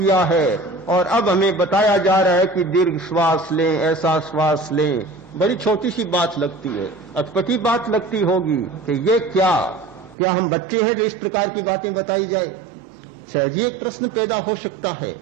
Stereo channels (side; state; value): left; drops out; at 10.2 s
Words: है और अब हमें बताया जा रहा है कि दीर्घ श्वास लें, ऐसा श्वास लें। बड़ी छोटी सी बात लगती है, अटपटी बात लगती होगी कि ये क्या हम बच्चे हैं जो इस प्रकार की बातें बताई जाए? शायद ये एक प्रश्न पैदा हो सकता है,